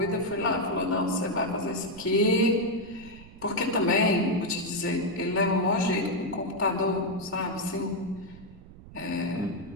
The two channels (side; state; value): right; noise; rumble, 18 dB below the sound